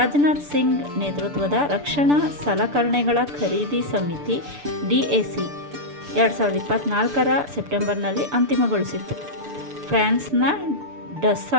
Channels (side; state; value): left; late; 6.9 ms